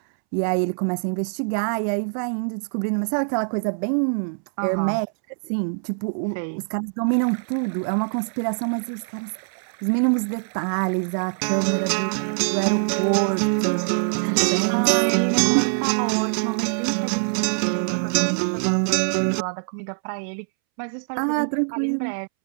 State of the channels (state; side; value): silent; left; 63 dB below the other